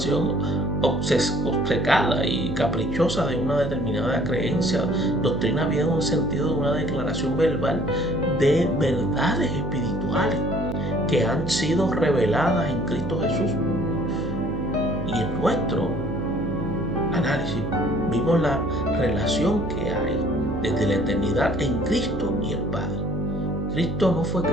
obcecada y caprichosa de una determinada creencia. Doctrina viene en un sentido de una declaración verbal de verdades espirituales que han sido reveladas en Cristo Jesús. Y en nuestro análisis vimos la relación que hay desde la eternidad en Cristo y el Padre. Cristo no fue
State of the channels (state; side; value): noise; right; hum, 4 dB below the sound